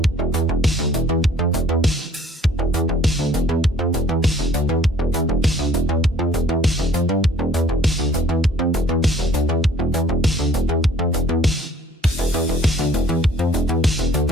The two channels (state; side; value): normal; both; correlation 0.56